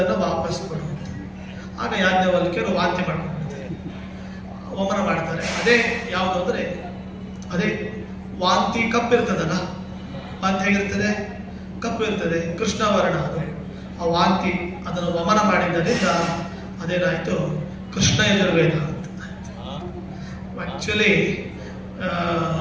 ವಾಪಸ್ ಕೊಡು ಅಂತ. ಆಗ ಯಾಜ್ಞವಲ್ಕ್ಯರು ವಾಂತಿ ಮಾಡ್ಕೊಂಡ್ಬಿಡ್ತಾರೆ, ವಮನ ಮಾಡ್ತಾರೆ. ಅದೇ ಯಾವುದು ಅಂದರೆ ಅದೇ ವಾಂತಿ ಕಪ್ಪಿರ್ತದಲ್ಲ, ವಾಂತಿ ಹೇಗಿರ್ತದೆ? ಕಪ್ಪು ಇರ್ತದೆ, ಕೃಷ್ಣವರ್ಣ ಅದು. ಆ ವಾಂತಿ ಅದನ್ನು ವಮನ ಮಾಡಿದ್ದರಿಂದ ಅದೇನಾಯಿತು, ಕೃಷ್ಣ ಯಜುರ್ವೇದ ಅಂತ. ಆ್ಯಕ್ಚುಲಿ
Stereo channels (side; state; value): both; identical; correlation 1.00